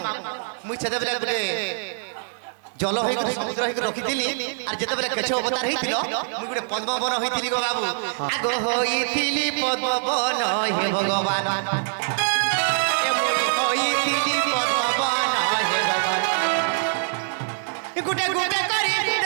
মুই সেতেবেলে গুটে জল হই সমুদ্র হই রখিছিলি আর যেতেবেলে কেছ অবতার হইছিল মুই গুটে পদ্ম বন হইছিলি গো বাবু আগ হইছিলি পদ্ম বন হে ভগবান গুটে গুটে করি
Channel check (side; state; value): left; silent; digital silence